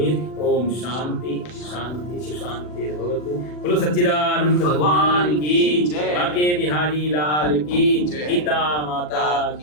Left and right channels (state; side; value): late; right; 40 ms